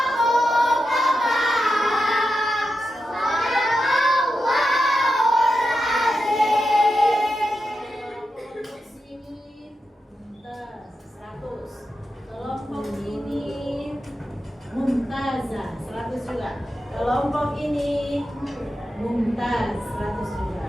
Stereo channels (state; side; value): normal; both; correlation 0.88